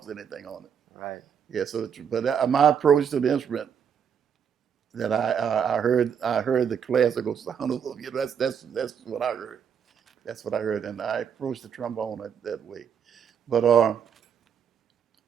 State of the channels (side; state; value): left; quieter; 7.7 dB